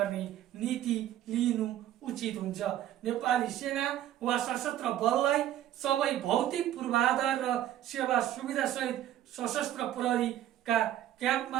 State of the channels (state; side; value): quieter; left; 12.4 dB